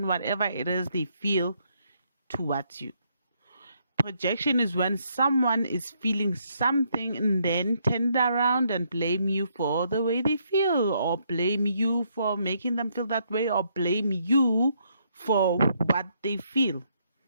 whatever it is they feel towards you. Projection is when someone is feeling something and then turn it around and blame you for the way they feel, or blame you for making them feel that way, or blame you for what they feel.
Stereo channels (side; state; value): both; inverted; correlation -0.73